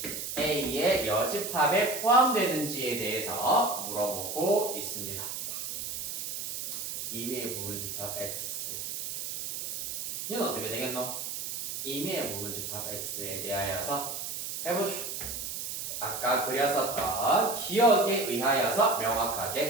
A의 여집합에 포함되는지에 대해서 물어보고 있습니다. 2위의 부분집합 X 이건 어떻게 되겠노? 2위의 부분집합 X에 대하여서 해보시오. 아까 그렸었던 기억에 의하여서 명확하게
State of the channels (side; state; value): right; noise; hiss, 5 dB below the sound